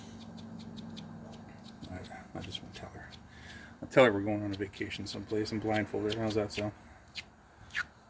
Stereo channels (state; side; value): identical; both; correlation 1.00